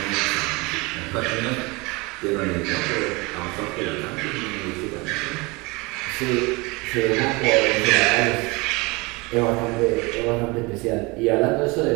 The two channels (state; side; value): quieter; left; 25.7 dB